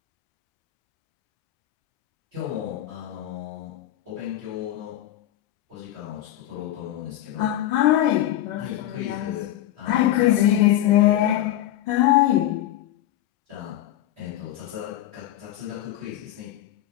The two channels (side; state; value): right; quieter; 13.1 dB